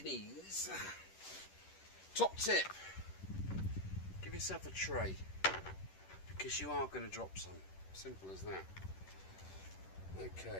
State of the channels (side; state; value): right; late; 10 ms